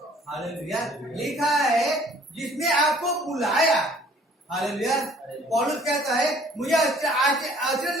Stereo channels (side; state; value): both; normal; correlation 0.56